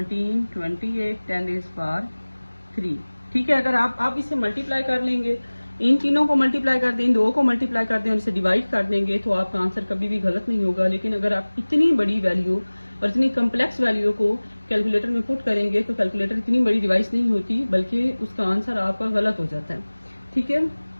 28 10⁻3, ठीक है। अगर आप इसे मल्टीप्लाई कर लेंगे, इन तीनों को मल्टीप्लाई कर दें, इन दो को मल्टीप्लाई कर दें और इसे डिवाइड कर देंगे तो आपका आंसर कभी भी गलत नहीं होगा। लेकिन अगर आप इतनी बड़ी वैल्यू और इतनी कम्प्लेक्स वैल्यू को कैलकुलेटर में पुट करेंगे तो कैलकुलेटर इतनी बड़ी डिवाइस नहीं होती, बल्कि उसका आंसर आपका गलत हो जाता है, ठीक है।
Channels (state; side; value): inverted; both; correlation -1.00